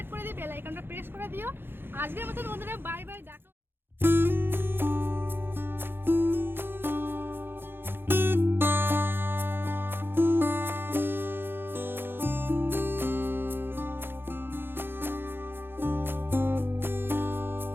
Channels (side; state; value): left; late; 0.10 ms